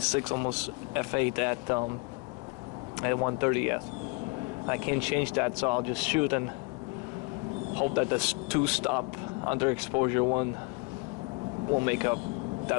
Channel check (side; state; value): right; quieter; 28.6 dB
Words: almost F8 at 130th. I can't change that, so I'll just shoot and hope that this 2-stop underexposure one won't make